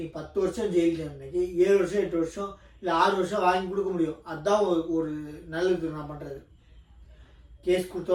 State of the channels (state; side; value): identical; both; correlation 1.00